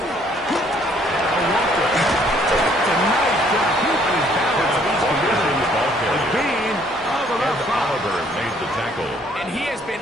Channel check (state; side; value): normal; both; correlation 0.63